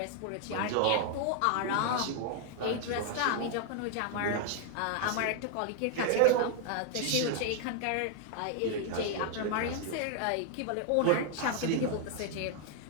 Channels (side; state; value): both; different; correlation 0.00